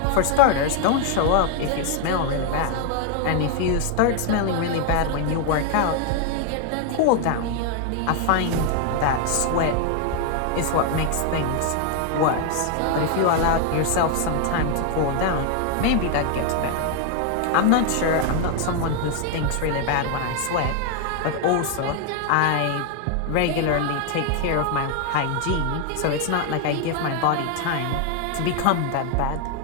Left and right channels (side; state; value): both; different; correlation 0.00